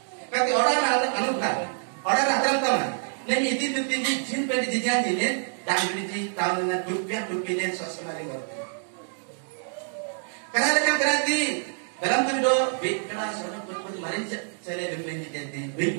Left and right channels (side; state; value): left; silent; digital silence